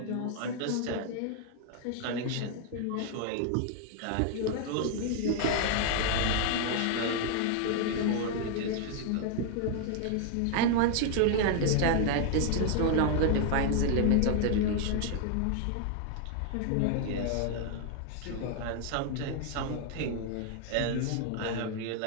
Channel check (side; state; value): both; different; correlation 0.00